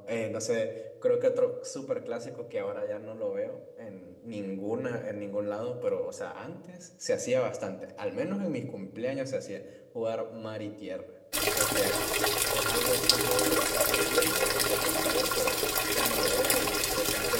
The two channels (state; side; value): identical; both; correlation 1.00